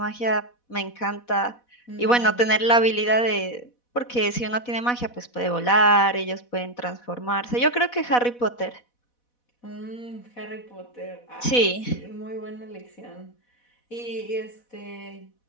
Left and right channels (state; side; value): late; right; 4.1 ms